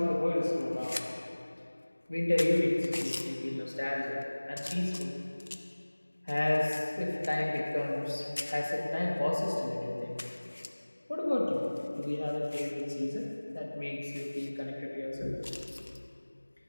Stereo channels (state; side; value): inverted; both; correlation -1.00